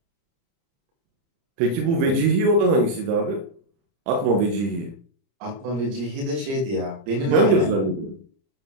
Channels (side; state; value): left; late; 30 ms